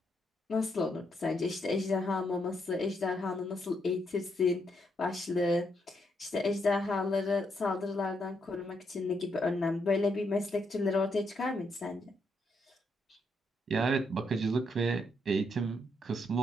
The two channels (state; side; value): normal; both; correlation 0.77